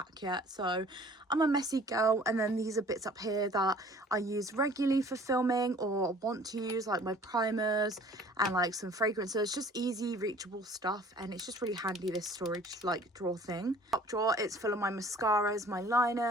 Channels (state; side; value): normal; both; correlation 0.51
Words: yet. So I'm a messy girl. And then these are bits up here that I use regularly for filming or want to use, like my primers and like some fragrances. Just easy reachable stuff, and it's just really handy, this storage like drawer thing. Top drawer, it's full of my mascaras, my